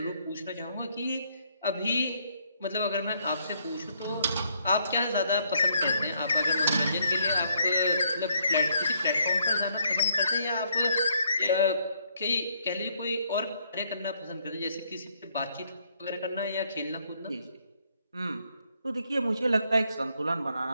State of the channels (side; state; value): both; inverted; correlation -0.71